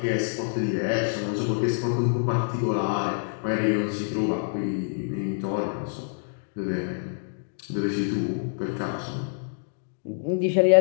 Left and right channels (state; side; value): silent; right; digital silence